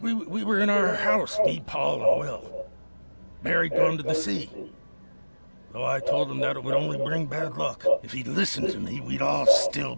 were in our house, me, Paul, and Will. Barry'd gone to the sea. Though I told him that it would only bring bad luck. If he'd listened to me, we'd all still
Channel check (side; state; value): both; inverted; correlation -1.00